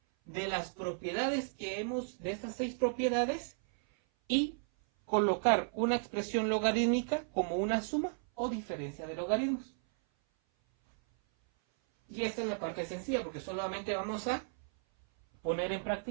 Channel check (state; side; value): silent; left; 55 dB below the other